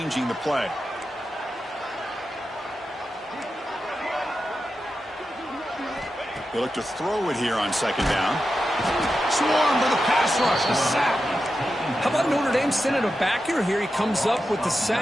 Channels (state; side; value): normal; both; correlation 0.90